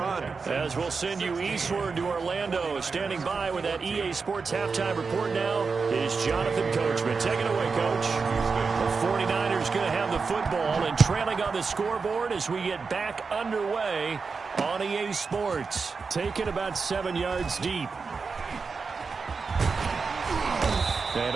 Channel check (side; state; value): left; quieter; 4.9 dB